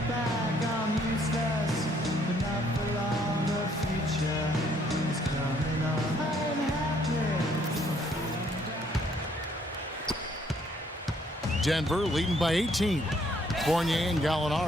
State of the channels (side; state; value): both; normal; correlation 0.66